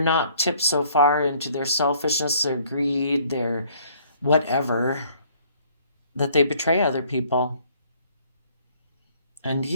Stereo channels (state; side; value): inverted; both; correlation -0.60